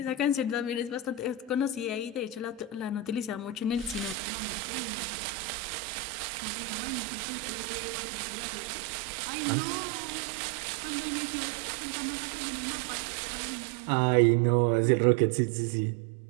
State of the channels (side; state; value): left; drops out; at 4.2 s